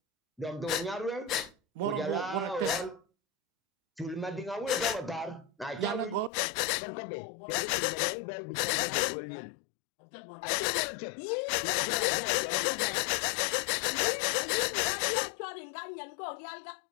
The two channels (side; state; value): right; drops out; at 6.3 s